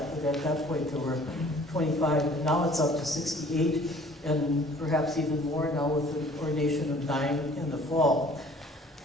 but at that point there were 25. And now it's up to 68, and perhaps even more now with the ordination of 9 in the fall.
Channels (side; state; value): both; normal; correlation 0.53